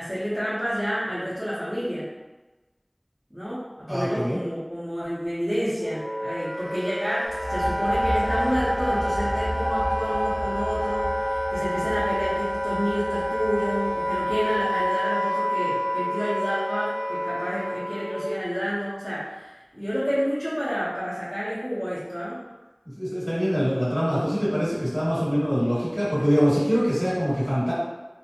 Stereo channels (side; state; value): both; identical; correlation 1.00